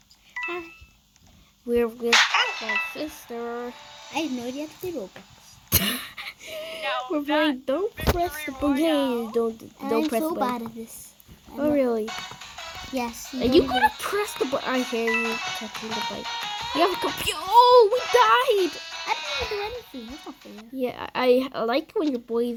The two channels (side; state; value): both; identical; correlation 1.00